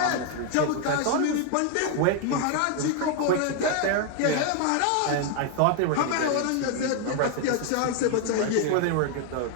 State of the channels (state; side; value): different; both; correlation 0.01